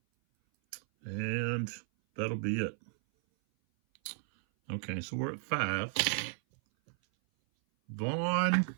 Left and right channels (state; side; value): silent; left; 55 dB below the other